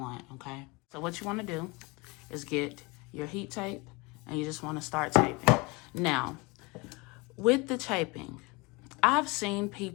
okay? So what you wanna do is get your heat tape, and you just wanna start taping. Now, with the taping, I've seen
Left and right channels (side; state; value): right; quieter; 26.1 dB